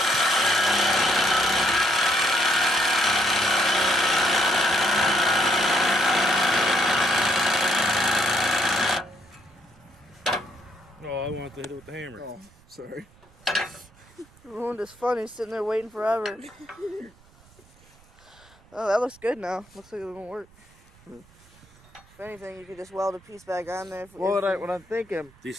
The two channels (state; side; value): noise; right; rumble, 28 dB below the sound